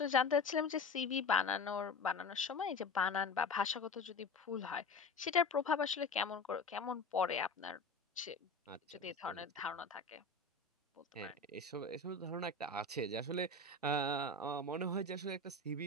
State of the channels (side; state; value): right; quieter; 3.5 dB